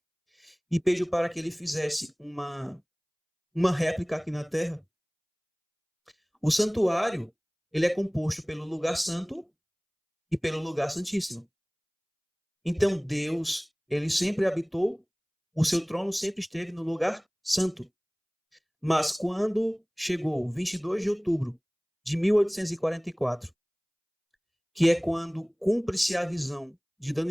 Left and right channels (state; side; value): identical; both; correlation 1.00